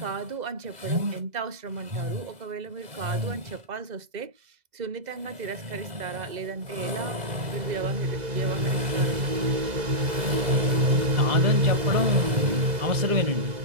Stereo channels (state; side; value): late; left; 2.0 ms